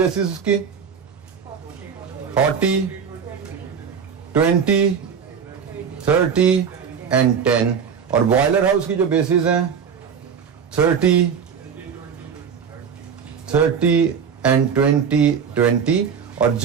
उसकी 40, 20, 30 एंड 10, और बॉयलर हाउस की जो बेसिस हैं 30 एंड 20। और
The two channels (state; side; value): quieter; left; 6.9 dB